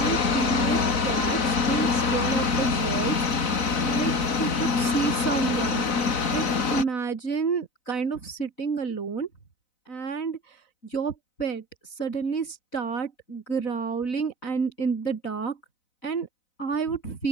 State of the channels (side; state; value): right; late; 4.0 ms